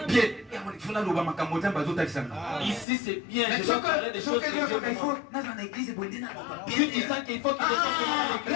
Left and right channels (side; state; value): right; drops out; at 2.9 s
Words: ici c'est bien. Je dois parler des choses que Dieu me montre. Qu'il faut qu'il